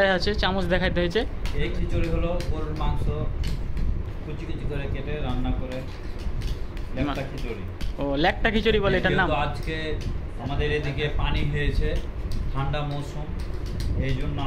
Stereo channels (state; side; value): identical; both; correlation 1.00